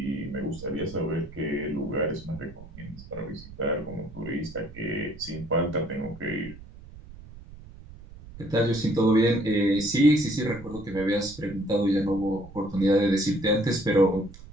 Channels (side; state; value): right; noise; rumble, 17 dB below the sound